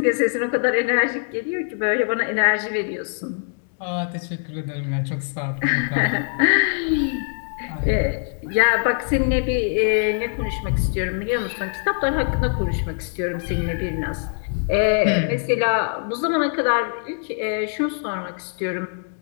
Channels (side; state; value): right; silent; 60 dB below the other